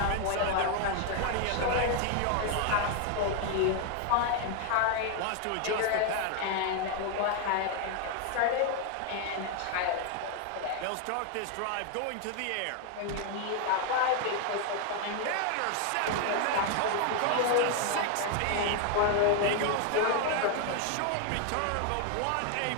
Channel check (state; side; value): different; both; correlation 0.00